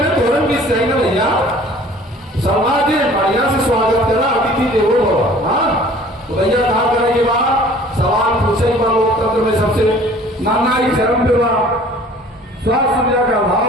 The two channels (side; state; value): both; normal; correlation 0.50